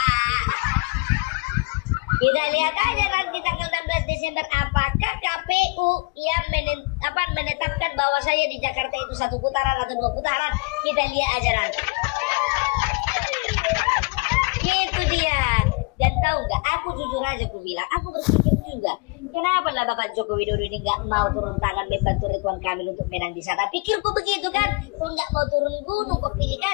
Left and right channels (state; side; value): quieter; right; 28.8 dB